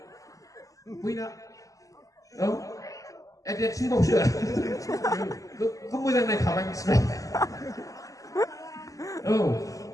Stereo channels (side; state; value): right; late; 0.16 ms